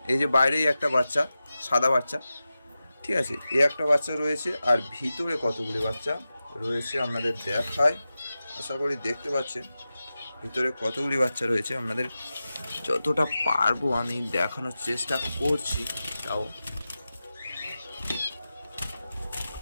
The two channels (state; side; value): inverted; both; correlation -0.94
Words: এই যে বাইরেই একটা বাচ্চা, সাদা বাচ্চা, ঠিক আছে, এই একটা বাচ্চা রয়েছে। আর ভিতরে কতগুলি বাচ্চা রয়েছে আপনাদের দেখায়, আশা করি দেখতে পাচ্ছেন ভিতরে কতগুলি বাচ্চা রয়েছে। আপনাদের যতটা পারবো আমি দেখানোর চেষ্টা করছি, তাও